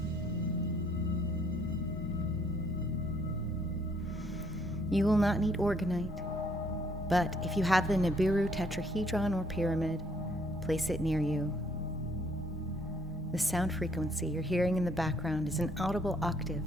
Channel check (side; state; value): both; normal; correlation 0.66